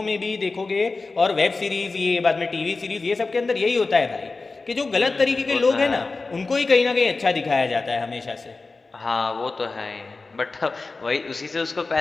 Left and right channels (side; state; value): right; quieter; 3.8 dB